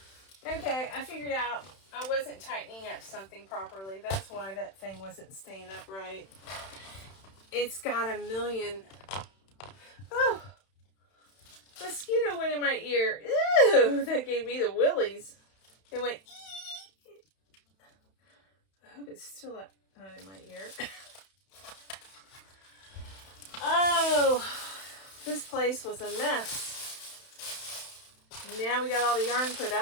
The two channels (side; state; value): right; late; 31 ms